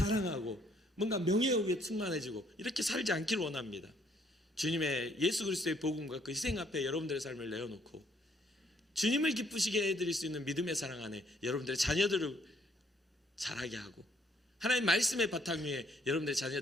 뭔가 명예욕에 충만해지고 이렇게 살지 않기를 원합니다. 주님의 예수 그리스도의 복음과 그 희생 앞에 여러분들의 삶을 내어놓고 주님을 기쁘시게 해드릴 수 있는 믿음의 사랑 안에 여러분들의 자녀들을 자라게 하고 하나님 말씀의 바탕 위에 여러분들의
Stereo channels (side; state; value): both; normal; correlation 0.67